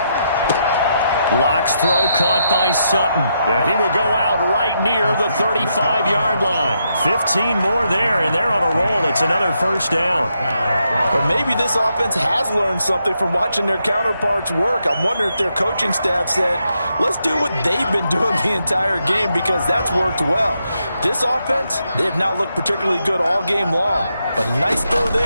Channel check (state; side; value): inverted; both; correlation -0.81